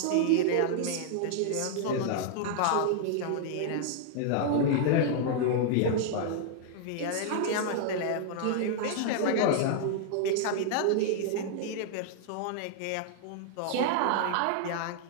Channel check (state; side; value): different; both; correlation -0.01